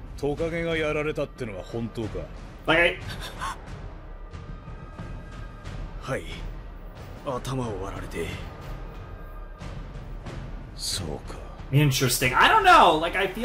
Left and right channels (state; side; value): identical; both; correlation 1.00